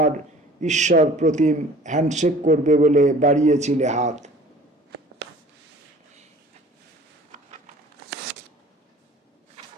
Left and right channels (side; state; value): both; normal; correlation 0.47